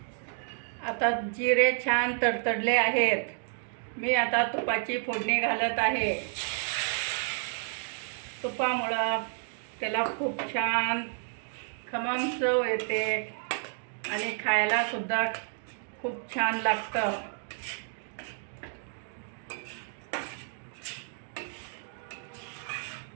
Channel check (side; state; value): left; silent; digital silence